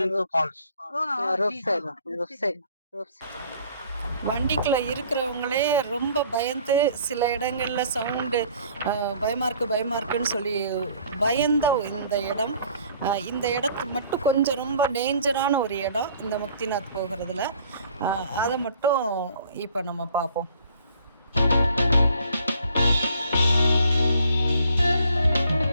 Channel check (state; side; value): inverted; both; correlation -0.57